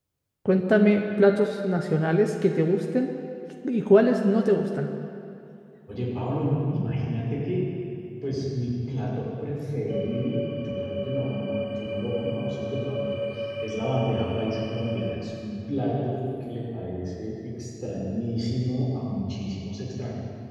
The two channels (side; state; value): both; identical; correlation 1.00